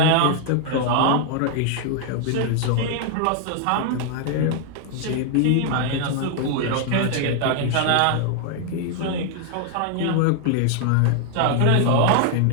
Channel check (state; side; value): different; both; correlation 0.00